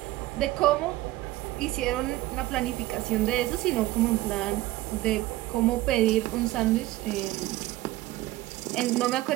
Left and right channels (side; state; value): left; quieter; 17.0 dB